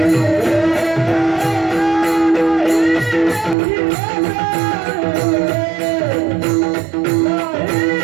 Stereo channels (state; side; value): drops out; left; at 3.6 s